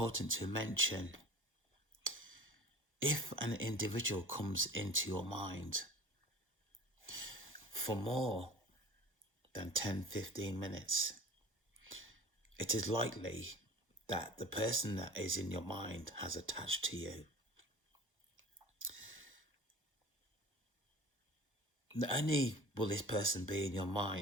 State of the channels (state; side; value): normal; both; correlation 0.41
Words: to mention, if an individual comes into your mind for more than 10-15 minutes, it is likely that the person that is in your mind has attached to you. Not only will this person be in your